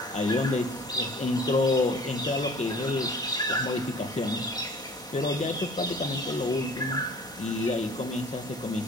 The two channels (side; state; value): both; normal; correlation 0.48